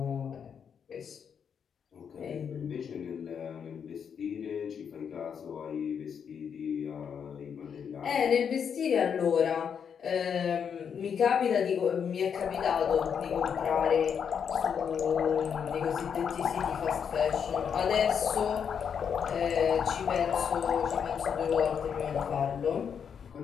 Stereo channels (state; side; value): quieter; right; 7.3 dB